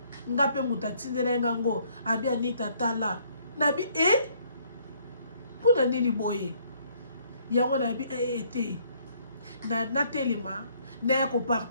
Nga pe mutu atindela ngango abi Anita tala nabi mpona nini boye yango nabi te na telema na ya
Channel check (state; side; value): inverted; both; correlation -0.65